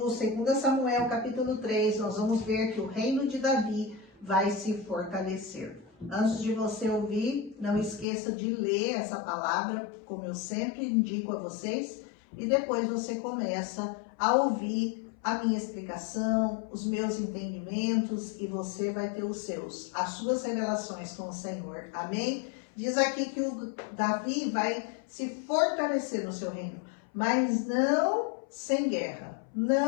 2 Samuel, capítulo 3. Nós vamos ver que o reino de Davi vai se fortalecer. Antes de você ouvir, não esqueça de ler essa palavra, como eu sempre indico a vocês, e depois você começa a ouvir a minha explicação, os meus entendimentos, e você vai ter as suas revelações com o Senhor. Amém? Diz aqui que o Davi vai se fortalecer no seu reino, mas não sem guerra,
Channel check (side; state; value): right; drops out; at 8.1 s